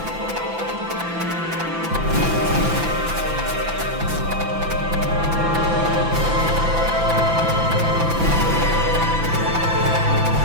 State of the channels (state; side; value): late; left; 5.9 ms